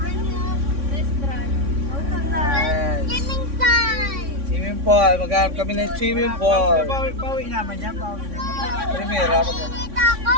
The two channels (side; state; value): left; late; 3.6 ms